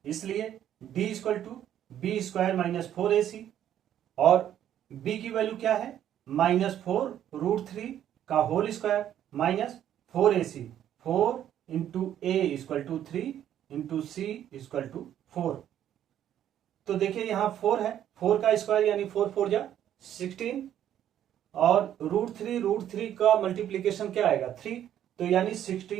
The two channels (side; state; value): left; quieter; 10.8 dB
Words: इसलिए d equal to b² minus 4ac, और b की value क्या है? -4 रूट 3 का whole square minus 4ac, 4 into a equal to 3 into c equal to 4। तो देखिए यहाँ 4 है, 4 का स्क्वायर यानी 4 4 जा 16, और रूट 3 का मल्टीप्लीकेशन क्या आएगा? 3, तो यानी